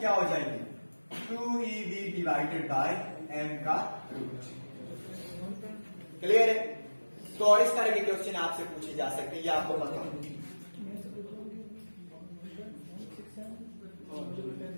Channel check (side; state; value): both; inverted; correlation -1.00